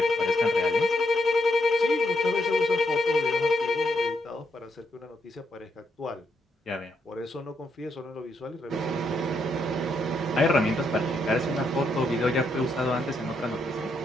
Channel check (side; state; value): both; normal; correlation 0.78